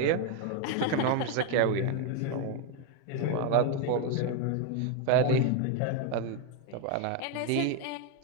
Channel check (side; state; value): both; different; correlation 0.02